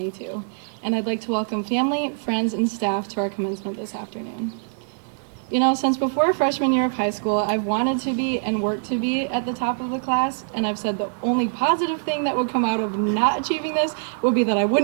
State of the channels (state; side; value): silent; left; digital silence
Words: and I'd like to welcome family, friends, and staff to our commencement this afternoon. You know, since before freshman year of high school, I've wanted to be and worked to be at the top of the class, and I've said the only positive thing that would come out of not achieving this would be that I